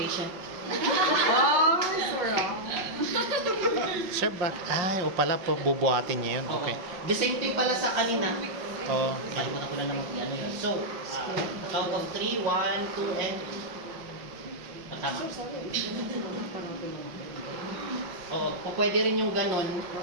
Oh, sorry. Sir, o pala po bubuhatin niya yun. Okay. The same thing pala sa kanina. Oh, Kalimutan ko lang naman ano yun. So, count of 3, 1, 2, and tama. Oo, pwede rin yung ganon.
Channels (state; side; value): late; left; 5.6 ms